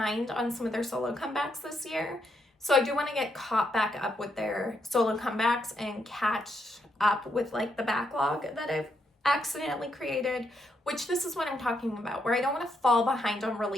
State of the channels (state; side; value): normal; both; correlation 0.78